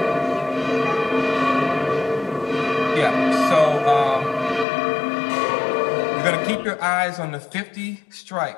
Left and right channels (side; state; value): right; drops out; at 4.7 s